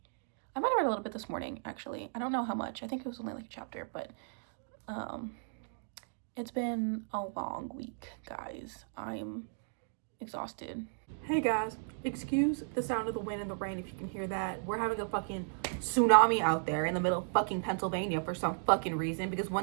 I might have read a little bit this morning, actually. I don't know how much. I think it was only like a chapter, but It's been a long week, guys. I'm exhausted. Hey guys, excuse the sound of the wind and the rain if you can hear that. We're having a fucking tsunami out there in the middle of fucking Pennsylvania for some fucking reason, because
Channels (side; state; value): left; silent; digital silence